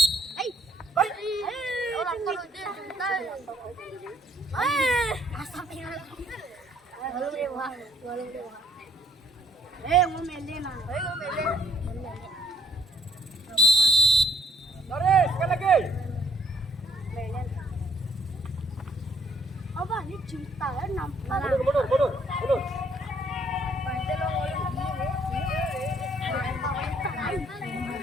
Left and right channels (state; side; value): normal; both; correlation 0.63